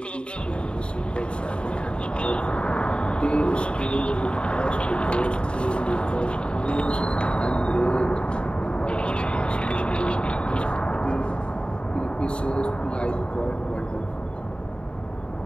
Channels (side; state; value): right; late; 0.054 ms